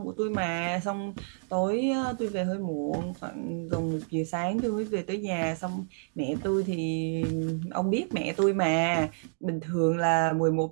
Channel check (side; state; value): left; silent; digital silence